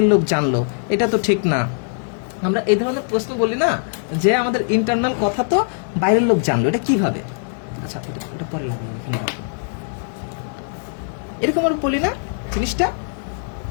লোক জানলো, এটা তো ঠিক না। আমরা এই ধরনের প্রশ্ন বলি না, যে আমাদের ইন্টারনাল কথা তো বাইরের লোক জানলো, এটা কিভাবে? আচ্ছা, ওটা পরে লাগবে, এখানে রাখো। এরকম আমরা বলি না জিনিসটা,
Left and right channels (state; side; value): silent; right; digital silence